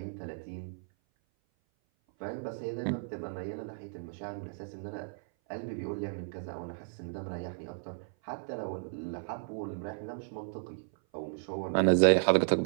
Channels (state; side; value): silent; left; 55 dB below the other